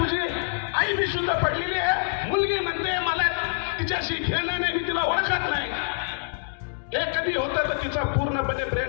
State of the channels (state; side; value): silent; right; digital silence